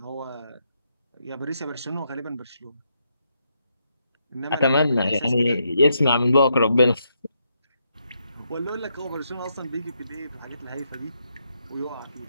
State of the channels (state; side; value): inverted; both; correlation -0.79